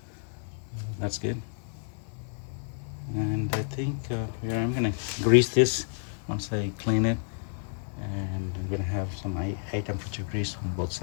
That's good. And I think yeah, I'm gonna grease this once I clean it, and I'm gonna have some high temperature grease on both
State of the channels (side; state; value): right; silent; 58 dB below the other